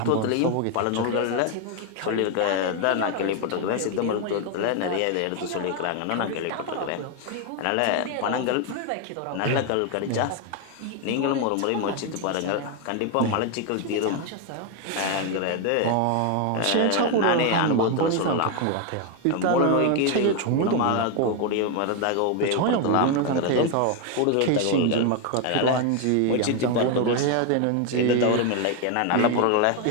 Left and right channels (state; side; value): different; both; correlation 0.01